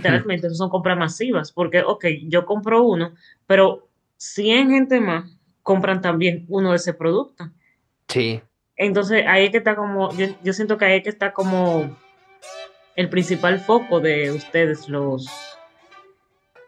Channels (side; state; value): both; identical; correlation 1.00